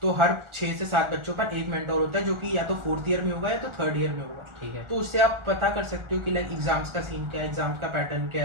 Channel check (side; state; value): left; late; 1.4 ms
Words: तो हर 6 से 7 बच्चों पर एक मेंटोर होता है जो कि या तो फोर्थ ईयर में होगा या तो थर्ड ईयर में होगा। ठीक है। तो उससे आप पता कर सकते हो कि लाइक एग्जाम्स का सीन क्या है, एग्जाम्स का पैटर्न क्या